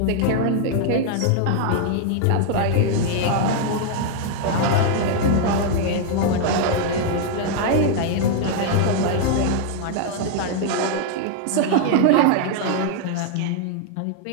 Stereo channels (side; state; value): both; different; correlation 0.00